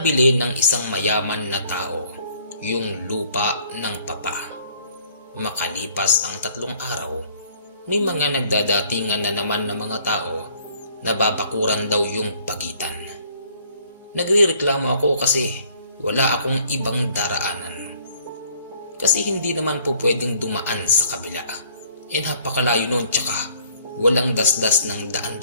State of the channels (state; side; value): inverted; both; correlation -0.59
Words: ng isang mayaman na tao yung lupa ng Papa. Makalipas ang 3 araw, may mga nagdadatingan na naman ng mga tao na babakuran daw yung pagitan. Nagrereklamo ako kasi wala akong ibang daraanan. Kasi hindi naman po pwedeng dumaan sa kabila. Napakalayo nun, tsaka walang dasdas ng daan